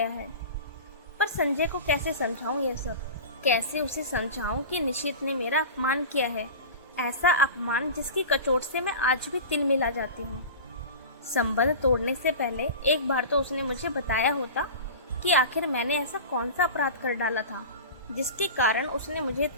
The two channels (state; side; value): inverted; both; correlation -0.32